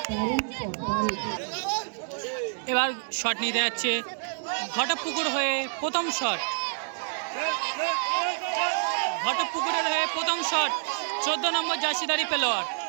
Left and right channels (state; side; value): silent; left; digital silence